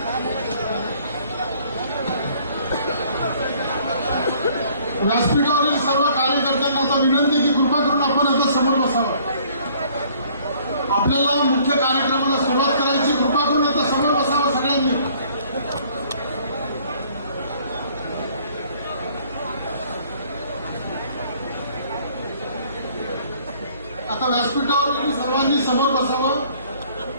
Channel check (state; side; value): inverted; both; correlation -0.58